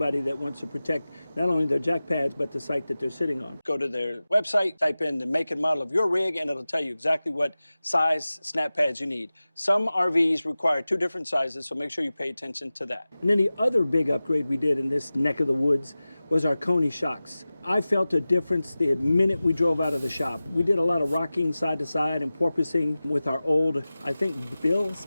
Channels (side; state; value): both; inverted; correlation -0.96